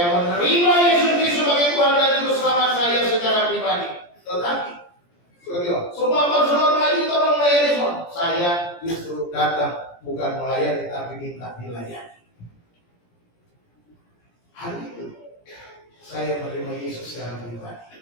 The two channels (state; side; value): late; right; 17 ms